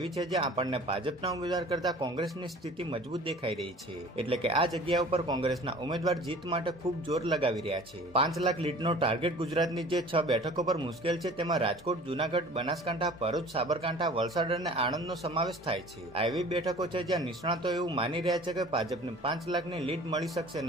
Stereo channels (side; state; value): both; normal; correlation 0.45